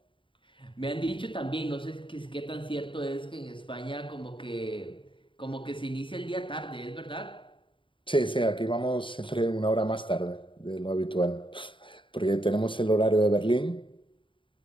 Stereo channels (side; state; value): right; late; 0.24 ms